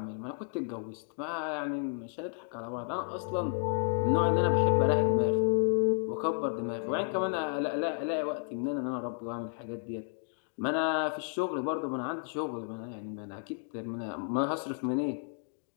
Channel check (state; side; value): silent; right; 56 dB below the other